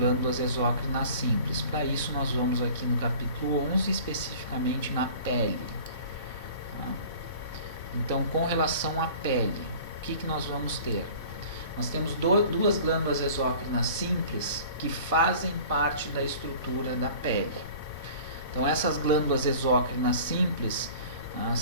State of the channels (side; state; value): both; inverted; correlation -0.44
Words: exócrinas simples. Para isso nós vamos aqui no capítulo 11, especificamente na pele. Então, com relação à pele, o que nós vamos ter? nós temos duas glândulas exócrinas simples que fazem parte da estrutura da pele. Então, essas glândulas exócrinas simples